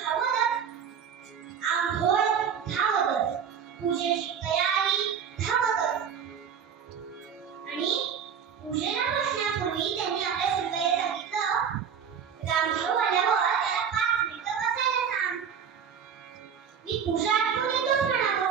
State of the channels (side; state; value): left; quieter; 7.4 dB